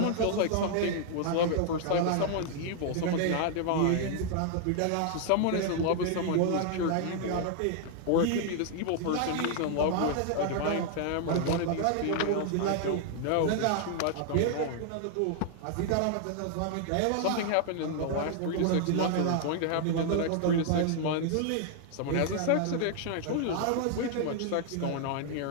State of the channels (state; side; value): different; both; correlation 0.00